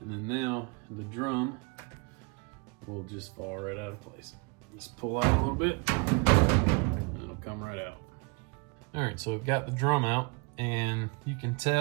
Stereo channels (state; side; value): quieter; left; 31.9 dB